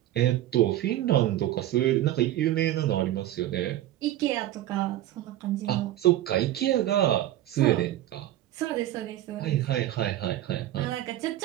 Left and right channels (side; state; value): left; quieter; 13.7 dB